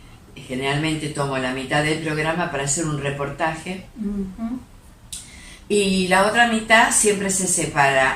generalmente tomo la mitad del programa para hacer un reportaje, y la otra mitad siempre se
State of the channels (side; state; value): both; identical; correlation 1.00